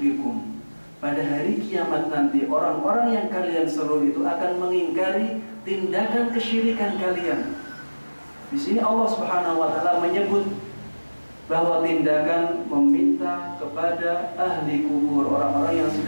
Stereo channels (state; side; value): inverted; both; correlation -1.00